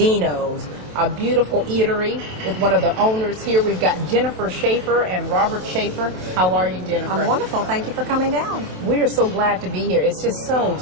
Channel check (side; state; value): left; late; 27 ms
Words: a beautiful eatery with one of the owners here. We've got Jennifer Schaefer and Robert Schaefer. How are you, Jennifer? I'm wonderful. Thank you for coming down. We are so glad to be here. It's just